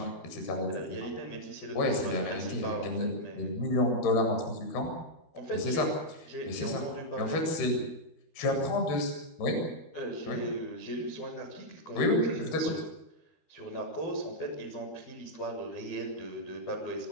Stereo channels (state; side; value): late; right; 13 ms